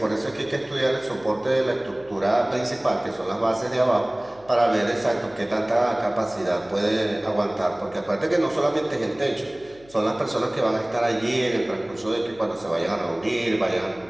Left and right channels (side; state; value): left; noise; hum, 26 dB below the sound